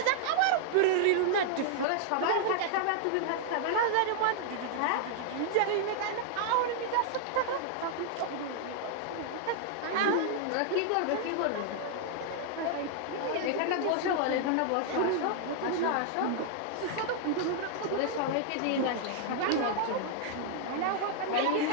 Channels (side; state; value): both; different; correlation -0.01